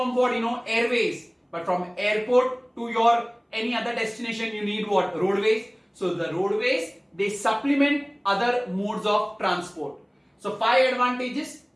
what? Airways. But from airport to your any other destination, you need what? Roadways. So the roadways, they supplement other modes of transport. So 5 advantages.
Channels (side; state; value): both; identical; correlation 1.00